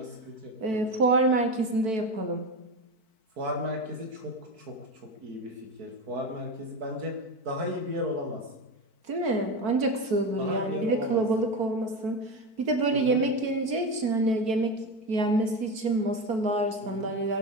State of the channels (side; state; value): left; late; 4.5 ms